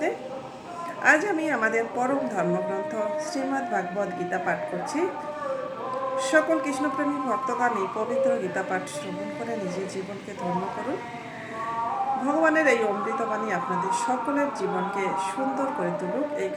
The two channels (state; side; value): identical; both; correlation 1.00